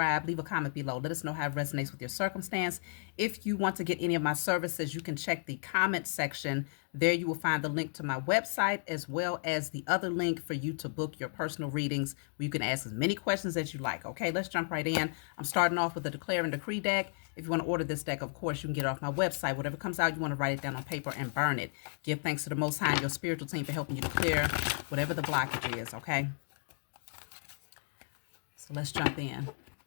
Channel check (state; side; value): silent; right; digital silence